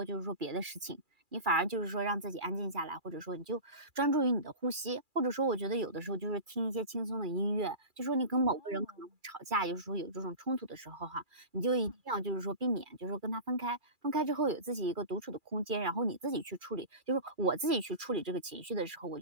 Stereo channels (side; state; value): left; late; 2.4 ms